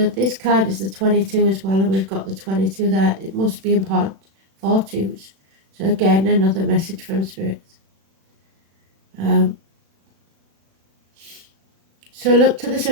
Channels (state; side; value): late; left; 36 ms